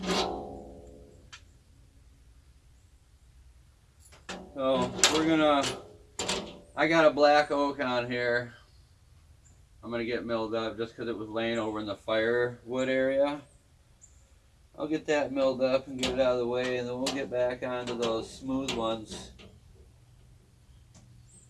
So I got a black oak on here. I'm gonna get milled up just because it was laying over in the firewood area. I'll get that milled up and get it out of the way, and then we'll get back onto those smooth ones.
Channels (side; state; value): both; identical; correlation 1.00